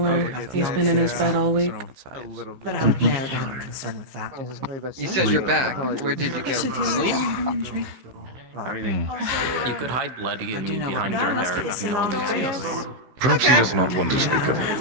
He's been in his bed all week. But I would narrow down the concern with that. You said you're back. Where did you go? Sleep? You could hide bloody and behind your hair. No one would see us. Perhaps he does not want to speak of it.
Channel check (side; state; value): left; late; 15 ms